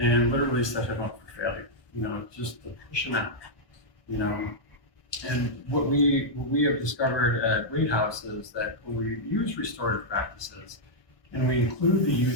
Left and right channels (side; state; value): right; late; 1.2 ms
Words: literally set him up for failure, you know, just to push him out, you know. And what we have discovered at Wade House is that when we use restorative practices and we include the